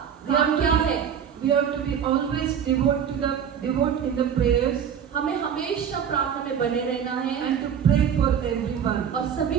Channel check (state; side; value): quieter; left; 8.2 dB